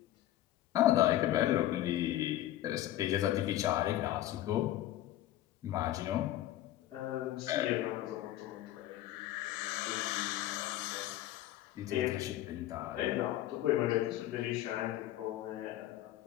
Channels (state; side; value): quieter; right; 13.9 dB